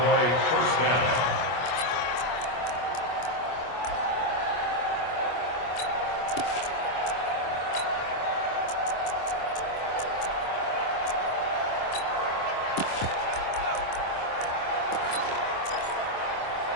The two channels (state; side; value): late; right; 25 ms